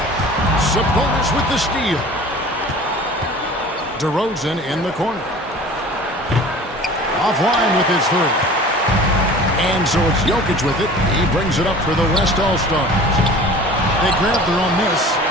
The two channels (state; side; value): normal; both; correlation 0.43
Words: Sabonis with the steal. DeRozan in the corner. Offline with his 3. And so it's Jokic with it. He brings it up for the West All-Stars. They grab their own miss.